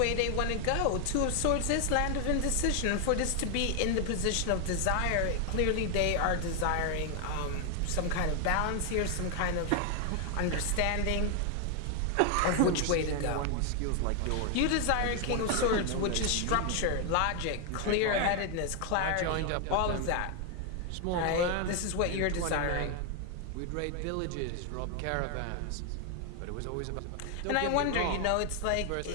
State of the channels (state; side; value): different; both; correlation 0.00